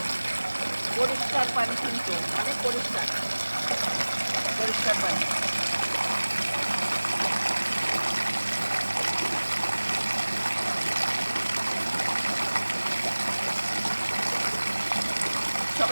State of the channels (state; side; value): inverted; both; correlation -1.00